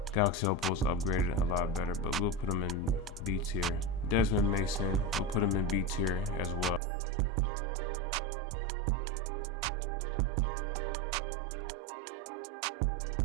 Galaxy Opal's upgraded a lot better, but we'll put him in B tier. Desmond Mason, we'll put him in B tier as well. Pretty good point guard. Pretty good dunking animation. So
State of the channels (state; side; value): drops out; left; at 6.8 s